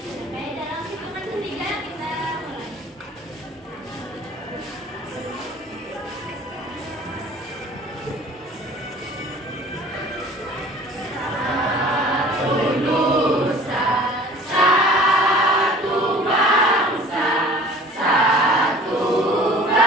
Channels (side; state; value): both; normal; correlation 0.47